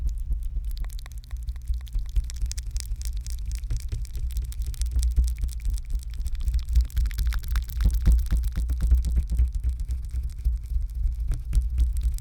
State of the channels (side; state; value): both; identical; correlation 1.00